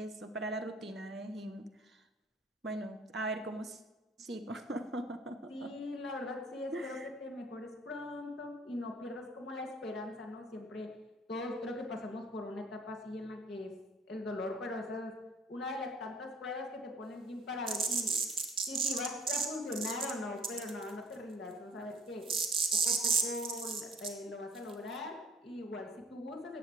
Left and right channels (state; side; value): normal; both; correlation 0.55